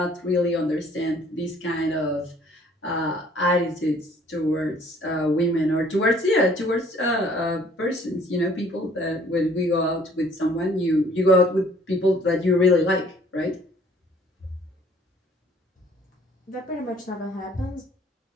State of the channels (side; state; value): both; normal; correlation 0.57